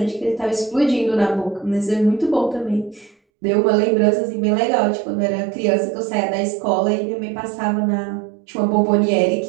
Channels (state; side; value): drops out; left; at 3.2 s